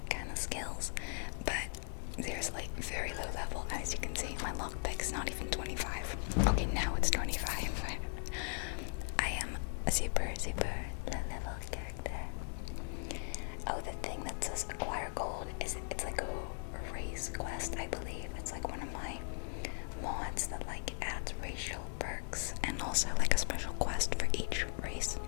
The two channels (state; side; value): silent; right; 52 dB below the other